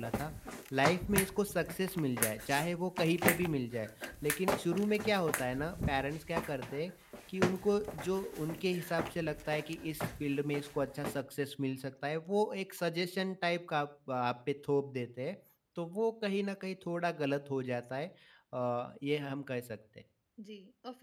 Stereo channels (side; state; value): both; identical; correlation 1.00